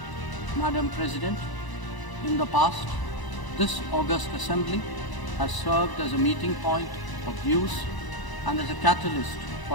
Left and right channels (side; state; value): right; late; 1.0 ms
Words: Madam President, in the past, this august assembly has served as a meeting point of views and as a catalyst